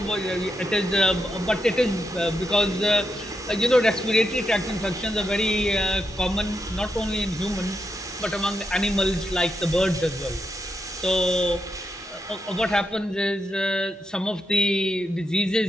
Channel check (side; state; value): both; normal; correlation 0.84